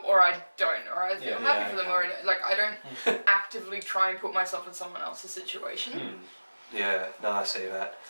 or I don't, or I feel happy for them or I don't. Like I don't actively try and put myself in someone else's situation. Yeah, no, I see that.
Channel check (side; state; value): both; inverted; correlation -1.00